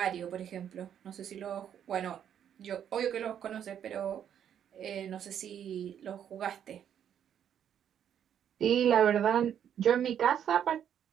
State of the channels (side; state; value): left; quieter; 9.3 dB